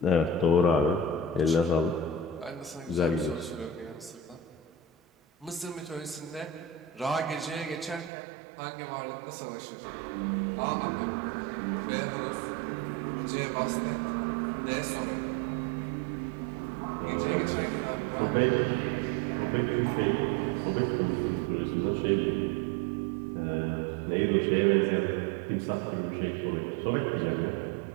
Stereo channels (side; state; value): left; drops out; at 8.1 s